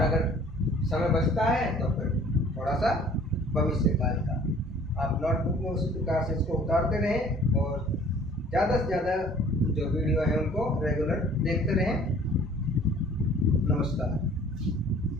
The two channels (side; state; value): both; normal; correlation 0.53